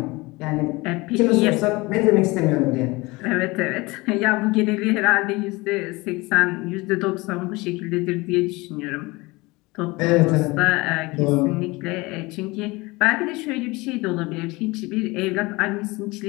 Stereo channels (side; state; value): right; quieter; 23.1 dB